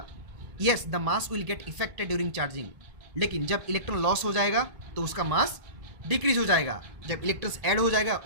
Yes, the mass will get affected during charging. लेकिन जब इलेक्ट्रॉन लॉस हो जाएगा तो उसका मास डिक्रीज हो जाएगा। जब इलेक्ट्रॉन्स ऐड हो जाएगा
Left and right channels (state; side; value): late; left; 1.8 ms